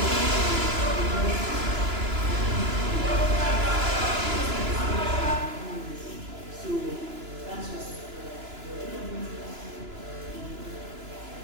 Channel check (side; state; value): left; late; 2.9 ms